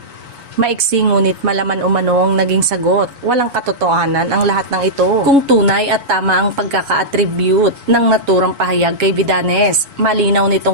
Maiksi ngunit malaman umano ang naging sagot. Walang katotohanan ang lahat ng ito. Kung tunay at tama ang pagkaka-attribute ng naturang pahayag kay Vidanes, malinaw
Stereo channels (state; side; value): late; left; 7.3 ms